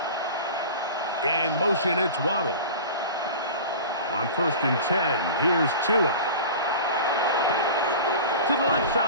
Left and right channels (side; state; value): both; inverted; correlation -0.35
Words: In motion, it's Waddle. On 1st and 10, here's Tua. To the left